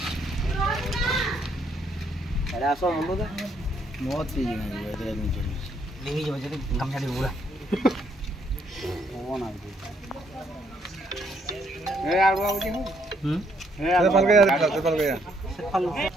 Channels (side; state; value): both; normal; correlation 0.71